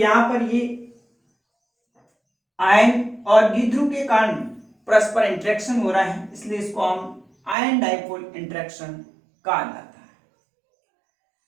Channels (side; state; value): left; drops out; at 7.6 s